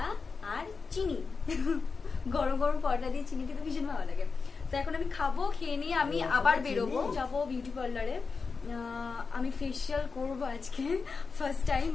আর চিনি। গরম গরম পরোটা দিয়ে চিনি খেতে ভীষণ ভালো লাগে। তো এখন আমি খাবো, খেয়ে নিয়ে আমি আবার বেরোবো, যাবো বিউটি পার্লারে। আমি ফেসিয়াল করবো আজকে ফার্স্ট টাইম,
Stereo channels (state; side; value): quieter; right; 4.8 dB